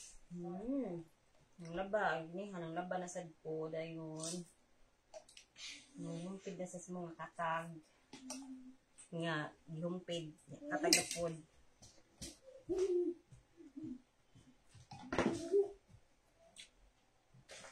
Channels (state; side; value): identical; both; correlation 1.00